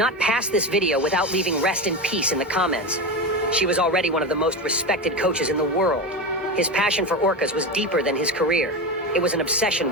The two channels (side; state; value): both; normal; correlation 0.20